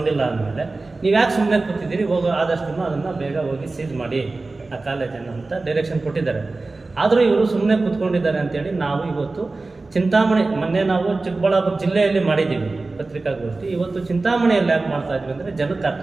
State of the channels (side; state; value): left; quieter; 3.4 dB